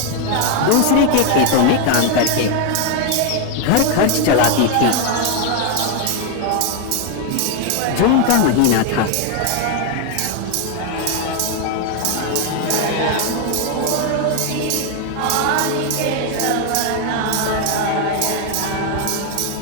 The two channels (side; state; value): both; different; correlation 0.01